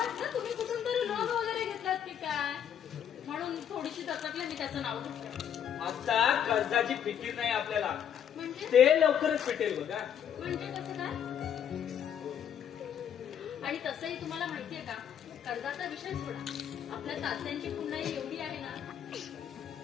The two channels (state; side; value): quieter; right; 9.0 dB